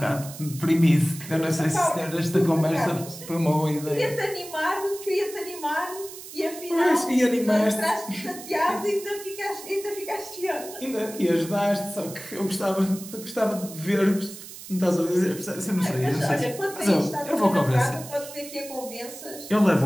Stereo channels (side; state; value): right; noise; hiss, 14 dB below the sound